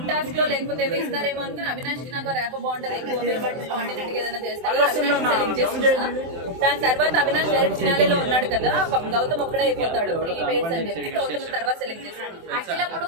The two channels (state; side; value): late; left; 24 ms